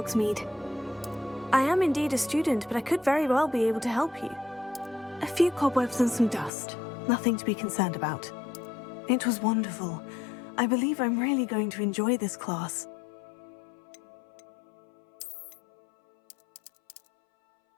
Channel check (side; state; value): right; drops out; at 6.5 s